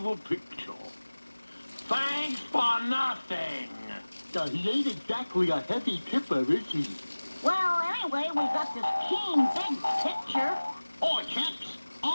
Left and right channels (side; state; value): both; inverted; correlation -1.00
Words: the picture. Thanks for nothing. He ain't exactly a heavy tipper, is he? Well, anyway, we got this keen, big picture. Oi, chaps.